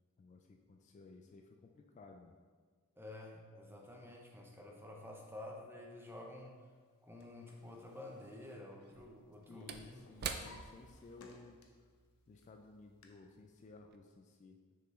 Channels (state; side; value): normal; both; correlation 0.33